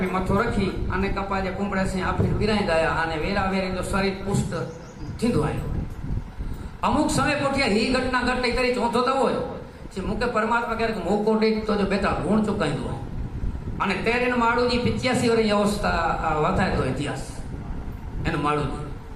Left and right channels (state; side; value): identical; both; correlation 1.00